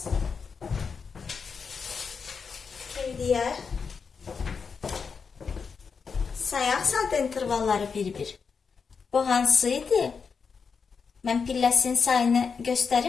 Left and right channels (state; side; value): quieter; right; 5.6 dB